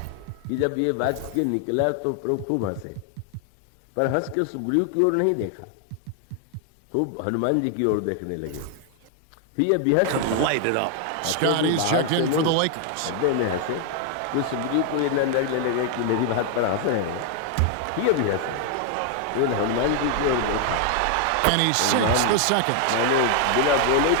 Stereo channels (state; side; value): different; both; correlation 0.00